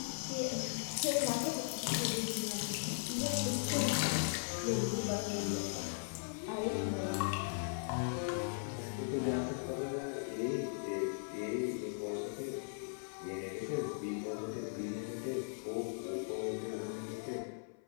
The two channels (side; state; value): right; silent; 52 dB below the other